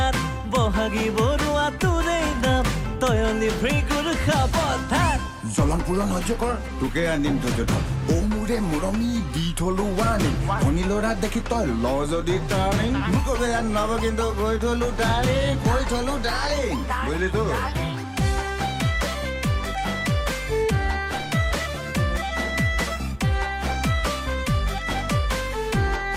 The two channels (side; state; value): both; identical; correlation 1.00